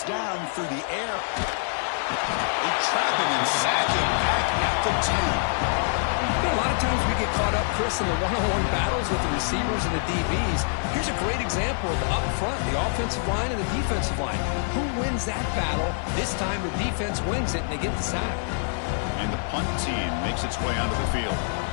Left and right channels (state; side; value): silent; right; 61 dB below the other